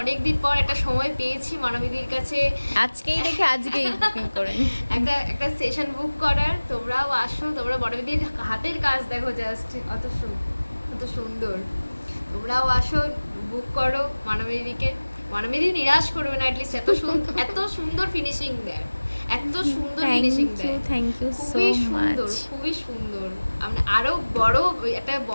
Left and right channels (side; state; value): both; inverted; correlation -1.00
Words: অনেক দিন পর একটা সময় পেয়েছি মনোমিদির কাছে আজকেই বুকিং করে নিই। একটা সেশন বুক করার। তোমরাও আসো, তোমরা বড়দিদির হাতের কাজ দেখো, জাস্ট অত সুন্দর। তোমরাও আসো, বুক করো মানবীদিকে। মানবীদি নিরাশ করবে না, অ্যাটলিস্ট এত সুন্দর ফিনিশিং দেয়, এত সুন্দর ফিনিশিং দেয়। থ্যাংক ইউ সো খুবই সুন্দর, মাচ। খুবই সুন্দর। আমরা আরো একটা